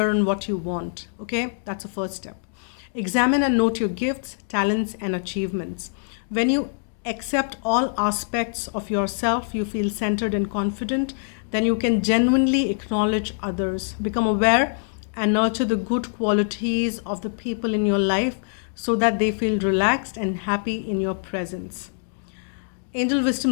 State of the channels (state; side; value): silent; right; digital silence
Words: on what you want. Okay, that's the first step. Examine and note your gifts, talents, and achievements. When you accept all aspects of yourself, you feel centered and confident, then you can genuinely acknowledge others. Become aware and nurture the good qualities of the people in your life so that they feel relaxed and happy in your presence. Angel